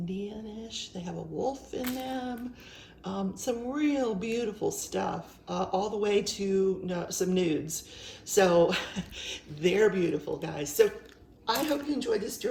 They have a wolf in them. Some real beautiful stuff, all the way to some nudes. So they're beautiful, guys. So I hope you enjoyed this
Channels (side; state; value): both; identical; correlation 1.00